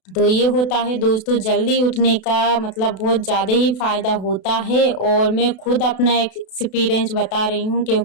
तो ये होता है दोस्तों जल्दी उठने का मतलब बहुत ज़्यादा ही फ़ायदा होता है और मैं खुद अपना एक्सपीरियंस बता रही हूँ,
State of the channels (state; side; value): late; right; 32 ms